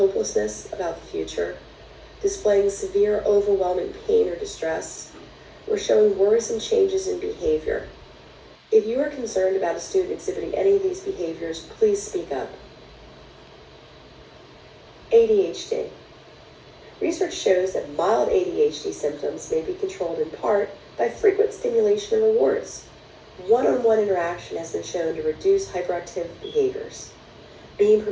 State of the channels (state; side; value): identical; both; correlation 1.00